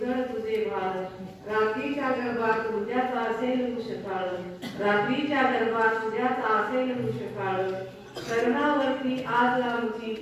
तुझे भाल, रात्रीच्या गर्भात उद्याचा असेल कुशकाळ, रात्रीच्या गर्भात उद्याचा असेल कुशकाळ, शरणावरती आज आमची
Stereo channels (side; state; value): both; identical; correlation 1.00